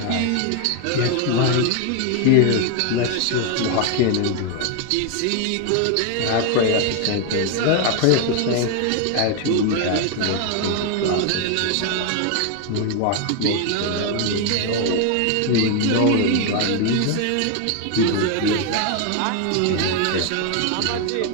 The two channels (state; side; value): different; both; correlation 0.01